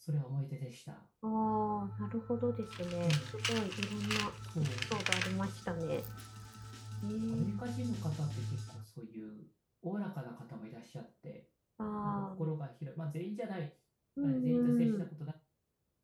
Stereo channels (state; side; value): identical; both; correlation 1.00